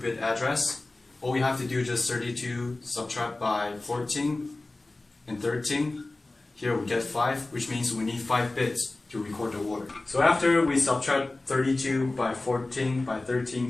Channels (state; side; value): quieter; right; 3.0 dB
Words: address. All we have to do is just 32 subtract by 14 and 13. Here we get 5, which means we need 5 bits to record the word. So after we subtract 32 by 14 by